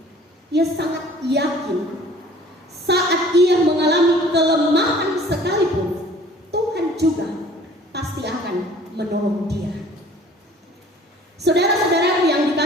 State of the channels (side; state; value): both; normal; correlation 0.51